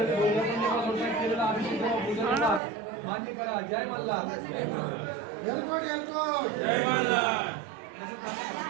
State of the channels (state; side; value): drops out; left; at 2.6 s